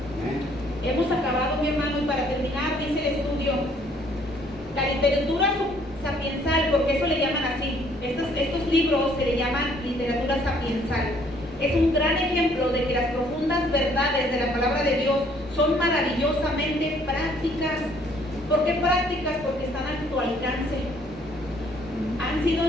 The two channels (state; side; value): normal; both; correlation 0.62